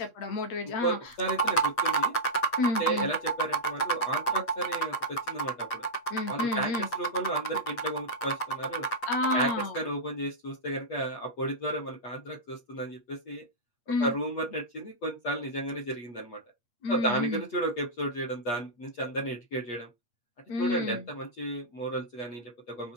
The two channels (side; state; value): right; late; 8.4 ms